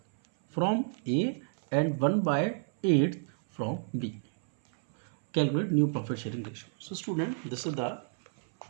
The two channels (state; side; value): silent; left; 58 dB below the other